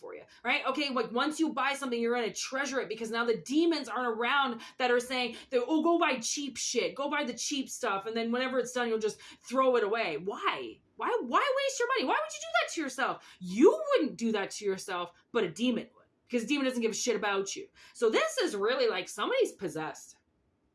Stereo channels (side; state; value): both; identical; correlation 1.00